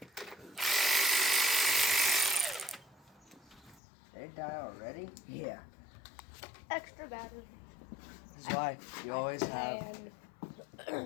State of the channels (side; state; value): right; drops out; at 3.8 s